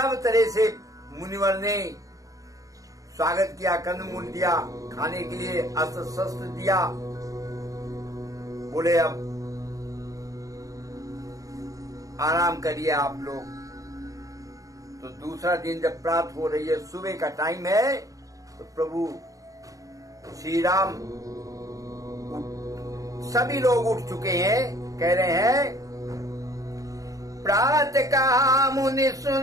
तरह से मुनिवर ने स्वागत किया, कंदमूल दिया खाने के लिए, अस्त्र शस्त्र दिया। बोले अब आराम करिए आप लोग। तो दूसरा दिन जब प्रातः हो रही है, सुबह का टाइम है, तो प्रभु श्री राम, सभी लोग उठ चुके हैं, कह रहे हैं, प्रात कहा मुनि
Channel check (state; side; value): late; left; 0.16 ms